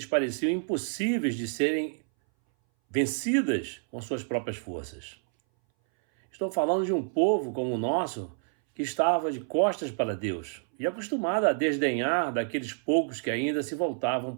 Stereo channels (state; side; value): silent; left; 59 dB below the other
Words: pareciam impossíveis de serem vencidas com suas próprias forças. Estou falando de um povo como o nosso que estava de costas para Deus e acostumado a desdenhar daqueles poucos que ainda se voltavam